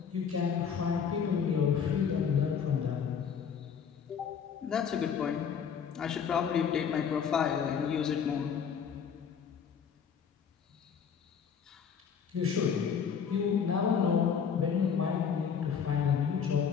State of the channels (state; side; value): quieter; right; 7.1 dB